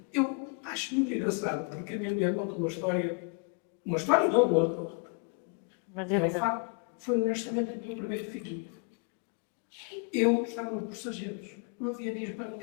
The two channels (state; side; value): quieter; right; 38.2 dB